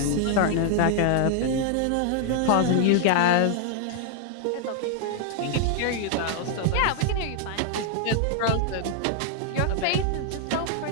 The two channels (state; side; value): different; both; correlation 0.00